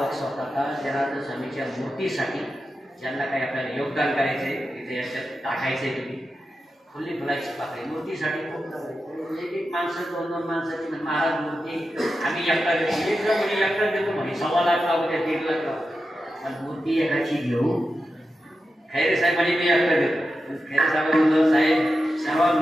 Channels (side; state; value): both; normal; correlation 0.90